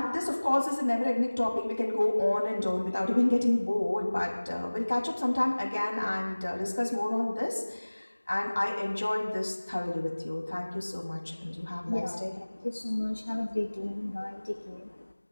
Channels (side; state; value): both; inverted; correlation -1.00